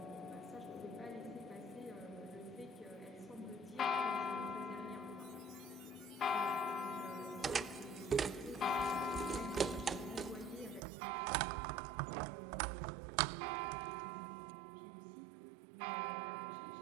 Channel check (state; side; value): drops out; left; at 10.8 s